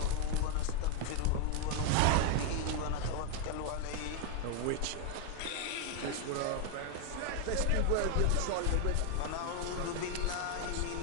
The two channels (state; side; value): different; both; correlation 0.01